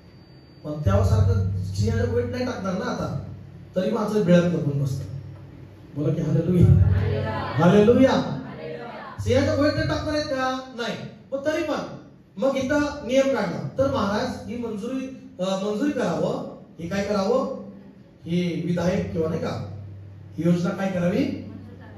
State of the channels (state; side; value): identical; both; correlation 1.00